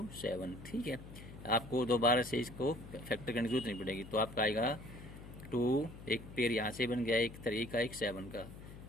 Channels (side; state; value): left; noise; hum, 14 dB below the sound